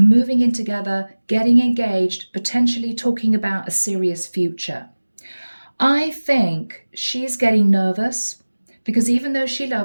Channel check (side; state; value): both; inverted; correlation -1.00